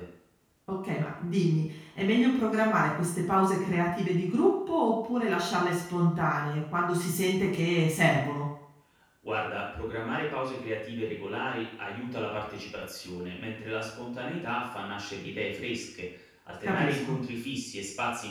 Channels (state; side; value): identical; both; correlation 1.00